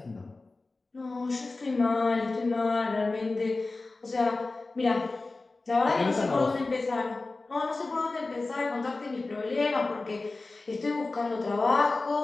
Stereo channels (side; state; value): right; quieter; 3.4 dB